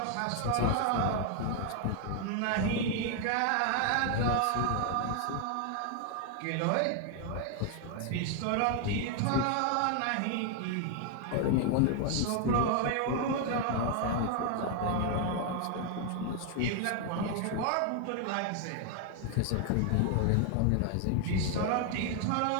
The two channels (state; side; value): different; both; correlation 0.00